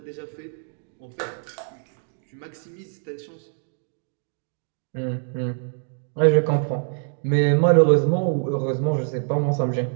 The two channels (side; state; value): left; silent; digital silence